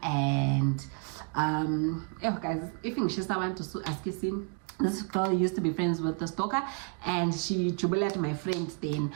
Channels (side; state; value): left; quieter; 36.5 dB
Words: guys, if you want to ask this girl used to be friends with the stalker and she jubilated my friend then.